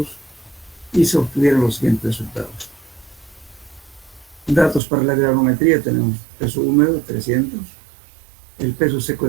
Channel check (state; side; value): drops out; left; at 4.8 s